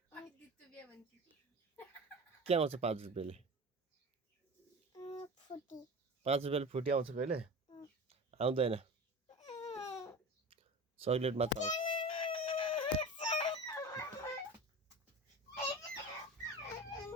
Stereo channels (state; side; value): normal; both; correlation 0.33